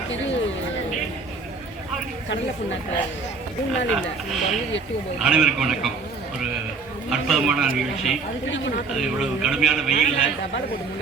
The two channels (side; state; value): left; quieter; 4.3 dB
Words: அனைவருக்கும் வணக்கம். ஒரு அற்புதமான நிகழ்ச்சி. அது இவ்வளவு கடுமையான வெயில்ல